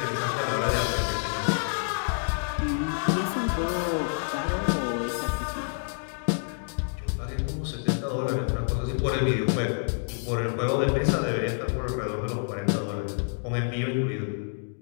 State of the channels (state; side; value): silent; right; digital silence